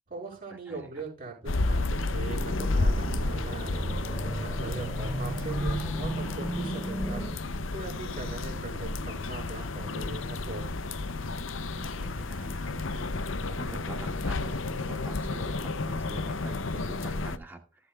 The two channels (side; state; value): both; normal; correlation 0.67